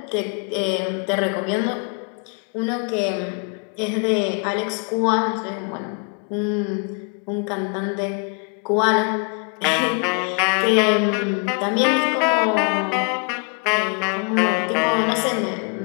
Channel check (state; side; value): quieter; right; 36.9 dB